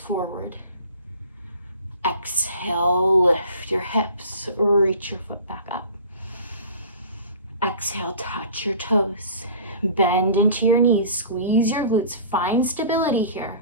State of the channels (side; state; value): both; inverted; correlation -0.43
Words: Exhale, lift your hips. Reach your foot back up. Exhale, touch your toes. Bend into your knees. Squeeze your glutes. Find stability here.